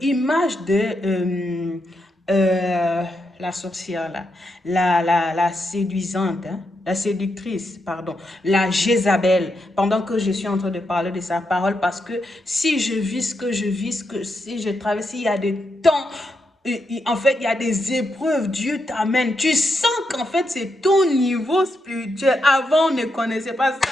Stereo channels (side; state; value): both; normal; correlation 0.83